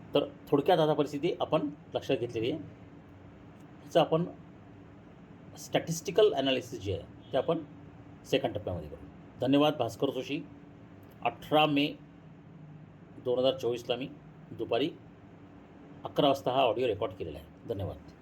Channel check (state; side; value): identical; both; correlation 1.00